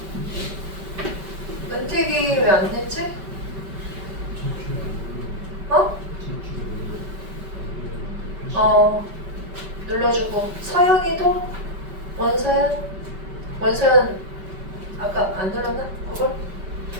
은택이 왜 안 냈지? 눌러주고 서연이도 원서연 아까 안 눌렀나? 그걸?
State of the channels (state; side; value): late; left; 5.2 ms